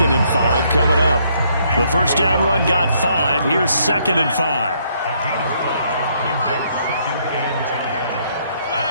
and 5 coming up. The first down run got 5. Here's 2nd and 5.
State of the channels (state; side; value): inverted; both; correlation -0.70